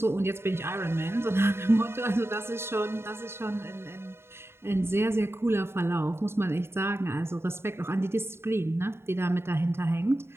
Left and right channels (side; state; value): left; late; 0.12 ms